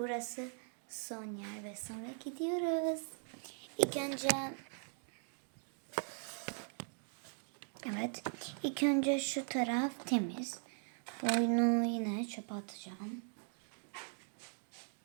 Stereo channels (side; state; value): left; silent; 51 dB below the other